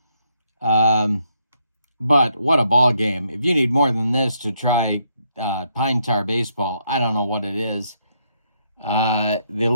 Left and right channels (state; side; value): inverted; both; correlation -0.75